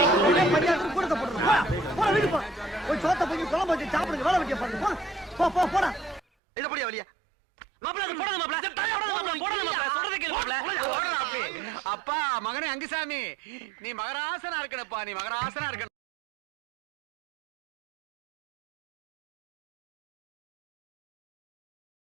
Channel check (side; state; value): left; drops out; at 6.2 s